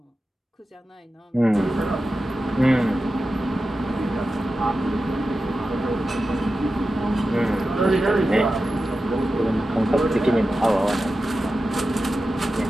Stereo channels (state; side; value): normal; both; correlation 0.92